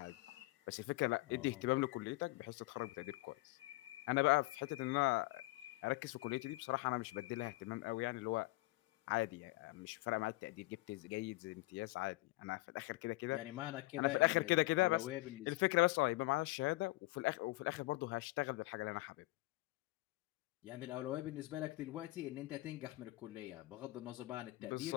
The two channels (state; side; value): quieter; right; 20.8 dB